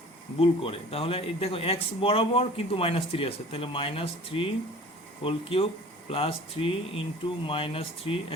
ভুল করে। তাহলে এই দেখো x বরাবর কিন্তু -3 আছে, তাহলে -3 whole cube plus 3 into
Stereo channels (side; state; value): both; normal; correlation 0.45